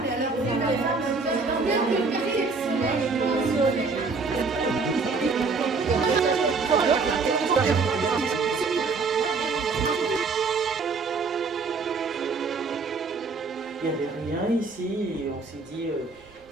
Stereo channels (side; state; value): left; quieter; 4.3 dB